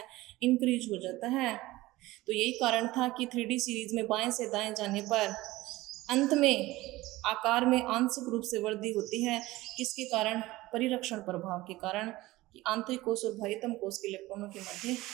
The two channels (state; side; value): quieter; left; 18.6 dB